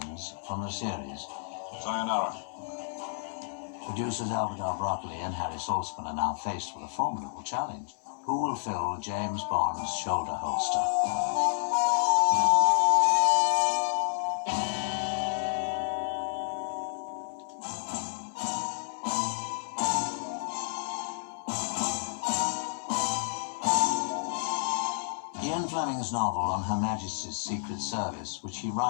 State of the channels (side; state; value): right; silent; 58 dB below the other